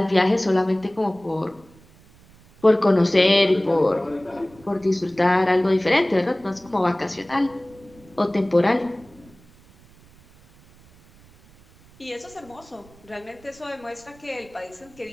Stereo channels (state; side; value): noise; right; rumble, 26 dB below the sound